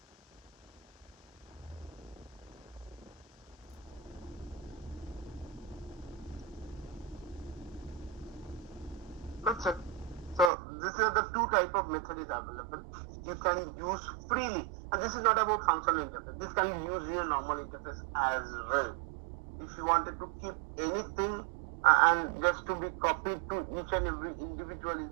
That's it. So these are the two type of method is available. You can use freely, and this is not about functional interface. This can be used in a normal interface as well. If you wanted to keep anything and just to be copied to each and every individual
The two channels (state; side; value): drops out; left; at 10.5 s